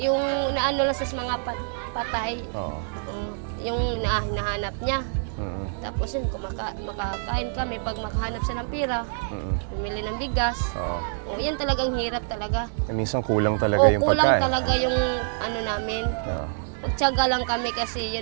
naano lang sa mga patay, yung nahanap niya. Tapos yun, makakain kami pag makahanap siya ng pira, bumili ng bigas. Yan talagang hirap talaga. Minsan kulang talaga yung pagkain. Kulang talaga yung namin. Magtiyaga lang kami kasi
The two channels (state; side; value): silent; left; digital silence